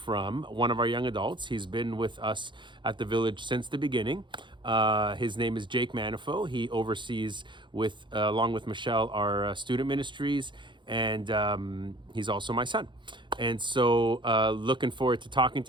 one of our young adults. He's been with us at the Village since the beginning. His name is Jake Manafo. He oversees, along with Michelle, our student ministries, and he's also my son. And so looking forward to talking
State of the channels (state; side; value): late; left; 0.23 ms